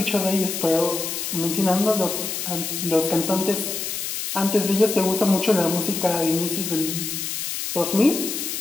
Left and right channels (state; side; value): noise; left; hiss, 4 dB below the sound